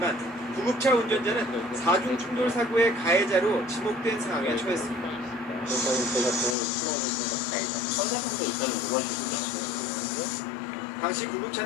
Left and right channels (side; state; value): right; drops out; at 6.6 s